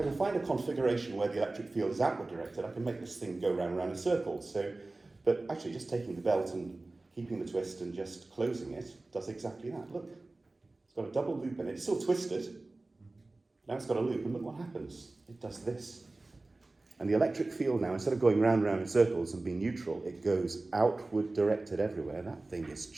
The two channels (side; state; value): left; quieter; 3.1 dB